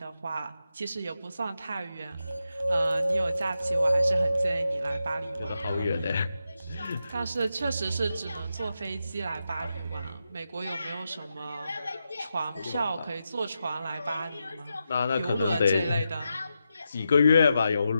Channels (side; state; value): both; inverted; correlation -0.88